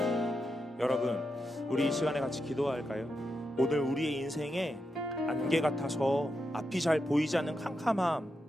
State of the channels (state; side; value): normal; both; correlation 0.86